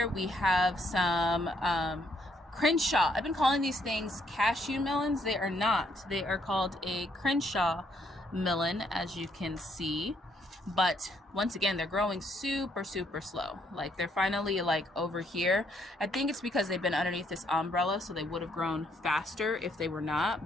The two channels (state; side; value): normal; both; correlation 0.71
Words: we have some Crenshaw. I've been calling these things cashew melons. They are not. They are called a Crenshaw melon, as you can see. But once again, they're growing super slow. Like they're finally like over here. I think it's because they've been underneath this umbrella, so they would have grown faster if they were